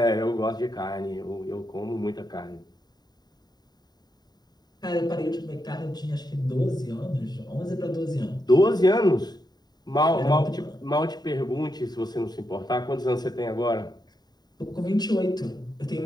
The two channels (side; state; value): right; late; 0.20 ms